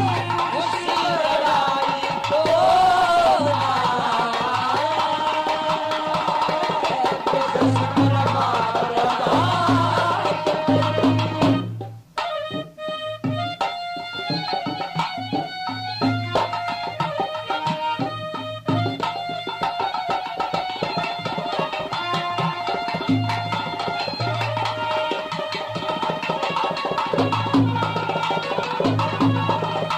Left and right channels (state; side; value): identical; both; correlation 1.00